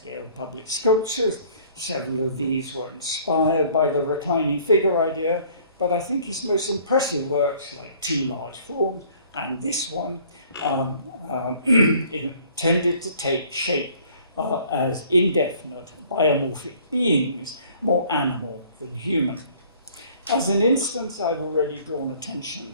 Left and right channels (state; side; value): inverted; both; correlation -0.55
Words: public sculptures. Several of these were inspired by the reclining figure idea, but I think his most impressive works, like Two Large Forms and this one, tended to take shape as indefinite biomorphic beings, more animal than human. As an instance, I've already drawn attention